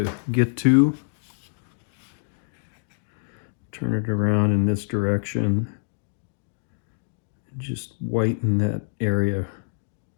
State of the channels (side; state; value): right; silent; digital silence